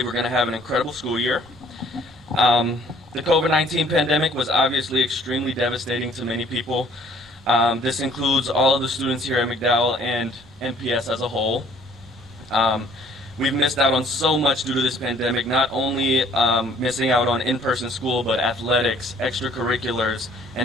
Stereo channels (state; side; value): normal; both; correlation 0.58